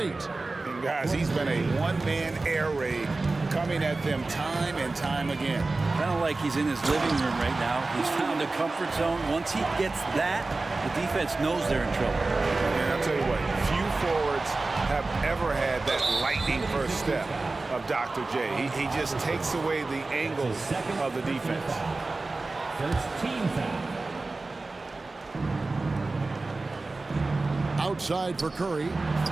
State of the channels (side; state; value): left; quieter; 3.4 dB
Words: And guys, he's been a one-man air raid coming at them time and time again. Kind of like he's in his living room right now. He's found a comfort zone. Once he gets that, the defense knows they're in trouble. And I'll tell you what, few forwards have ever had that lightning first step of Dr. J. He just takes away the angles of the defense. First team foul. Outside for Curry.